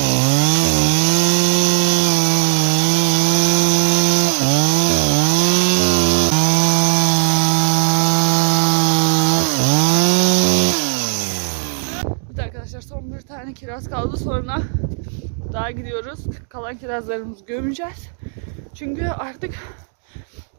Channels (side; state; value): left; silent; digital silence